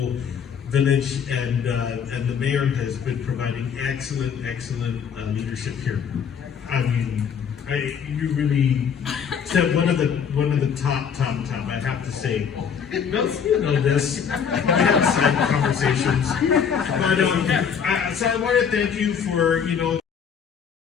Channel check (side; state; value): right; quieter; 7.2 dB